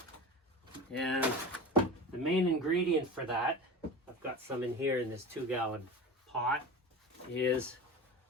and the main ingredient for that, I've got some in here in this 2-gallon pot, is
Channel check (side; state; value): both; normal; correlation 0.30